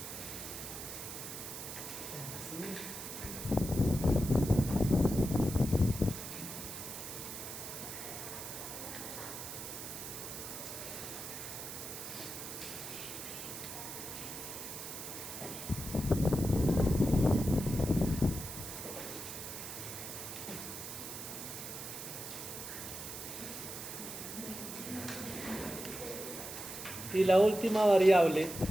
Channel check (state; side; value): noise; right; hiss, 8 dB below the sound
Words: Y la última variable,